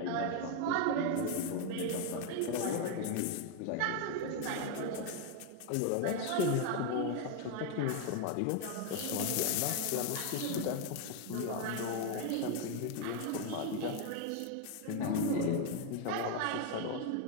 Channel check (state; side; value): different; both; correlation 0.01